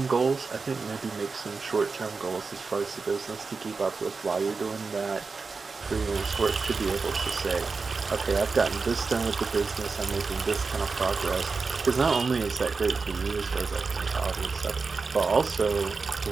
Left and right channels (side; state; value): left; quieter; 4.5 dB